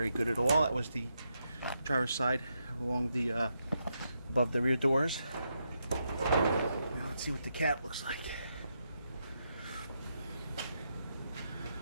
good at all. That was the driver's side along the above the rear doors. Now let's see what the cab looks like.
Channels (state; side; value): inverted; both; correlation -0.82